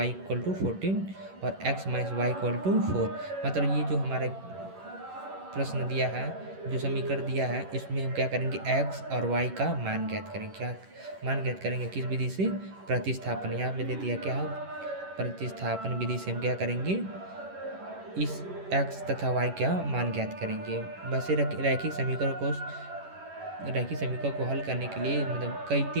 equal to 14 और x minus Y equal to 4। मतलब ये जो हमारा प्रश्न दिया है, जो समीकरण दिया है, इसमें हम क्या करेंगे, x और y का मान ज्ञात करेंगे। क्या मान ज्ञात करेंगे? किस विधि से? प्रतिस्थापन। यहाँ पे दे दिया क्या है, प्रतिस्थापन विधि से हम क्या करेंगे, इस x तथा y का मान ज्ञात करेंगे। वैसे रैखिक समीकरण को हल करने के लिए मतलब कई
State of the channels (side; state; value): left; late; 11 ms